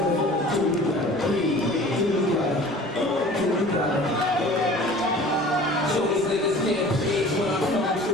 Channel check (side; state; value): both; normal; correlation 0.44